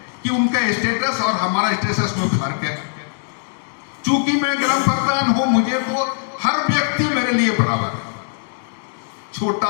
कि उनका स्टेटस और हमारा स्टेटस में फर्क है। चूंकि मैं ग्राम प्रधान हूं, मुझे तो हर व्यक्ति मेरे लिए बराबर है, छोटा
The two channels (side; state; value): right; silent; digital silence